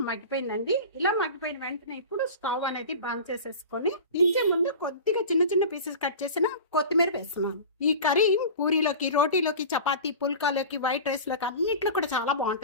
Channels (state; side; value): inverted; both; correlation -0.34